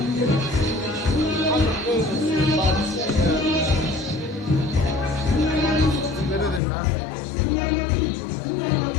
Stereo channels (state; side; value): drops out; right; at 6.6 s